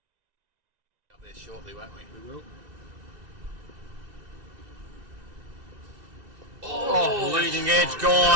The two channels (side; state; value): left; late; 2.6 ms